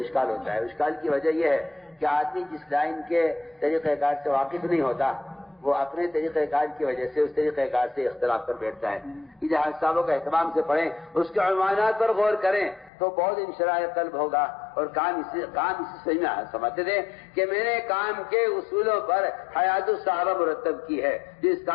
ہوتا ہے. اشکال کی وجہ یہ ہے کہ آدمی جس لائن کے طریقہ کار سے واقف نہیں ہوتا وہ اپنے طریقہ کار کی وجہ سے اس طریقہ کار سے اختلاف کر بیٹھتا ہے. یہ حیات صاحبوں کا اہتمام سے پڑھیں، اس کے عنوانات پر غور کریں تو بہت انشراح قلب ہوگا اور کام اسی صحیح میں سمجھتے تھے کہ میں نے کام کے اصولوں پر حیات الصحابہ مرتب کی ہے. جو اس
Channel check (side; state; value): right; drops out; at 12.9 s